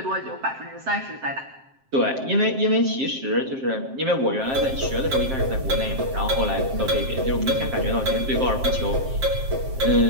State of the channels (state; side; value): late; left; 7.6 ms